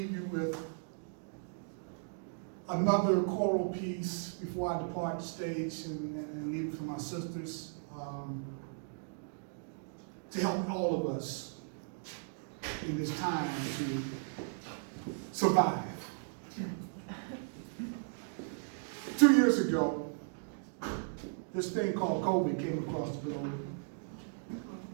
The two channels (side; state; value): left; silent; digital silence